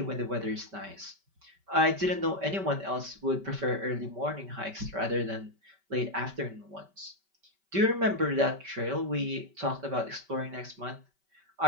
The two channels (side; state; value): left; late; 5.2 ms